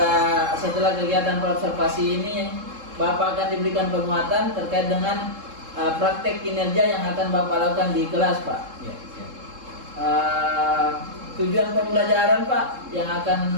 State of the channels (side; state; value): left; late; 3.7 ms